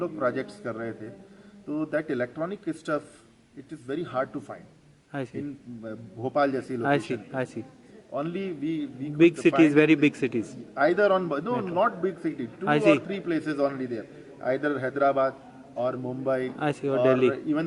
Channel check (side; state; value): both; identical; correlation 1.00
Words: प्रोजेक्ट्स कर रहे थे, तो that electronic stuff it is very hard to find I see in Bhopal जैसी I see location. I see Only we big could cities, find very it big cities either on no not big city, 2 I or see. 3 places only there, either Hyderabad or Mumbai I see, or or Delhi.